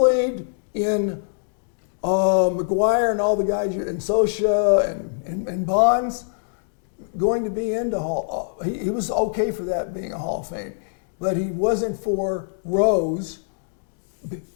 in McGuire and all the guys, and Sosa and Bonds going to be into Hall. He was okay for that being a Hall of Fame, but he wasn't for Rose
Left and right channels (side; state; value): right; silent; digital silence